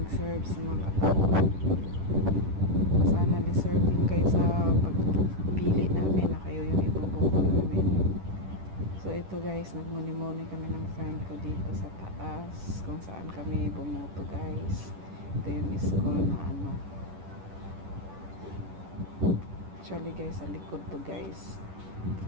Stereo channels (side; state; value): left; late; 10 ms